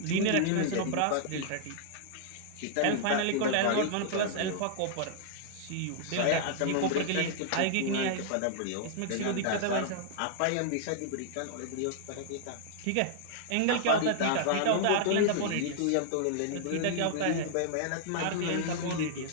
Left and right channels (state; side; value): different; both; correlation -0.01